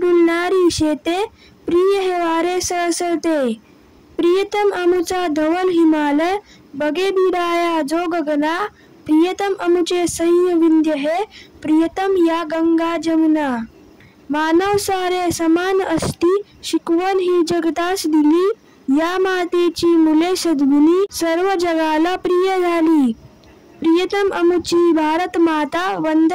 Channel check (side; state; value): both; identical; correlation 1.00